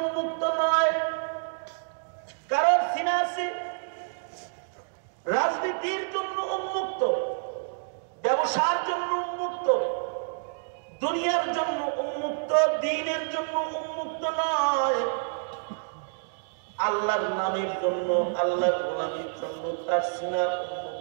উন্মুক্ত নয়, কারণ সিনা আছে রাজনীতির জন্য উন্মুক্ত, ব্যবসার জন্য উন্মুক্ত, দুনিয়ার জন্য উন্মুক্ত, দ্বীনের জন্য উন্মুক্ত নয়। আল্লাহর নামের জন্য, আল্লাহর গোলামীর জন্য তার সিনা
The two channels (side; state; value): left; silent; digital silence